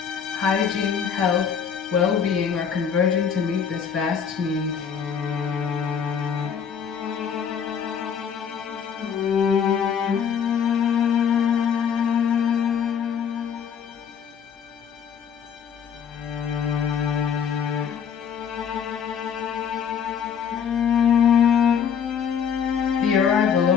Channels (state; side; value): quieter; right; 7.4 dB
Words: Hygiene, health, well-being are converging to meet this vast need.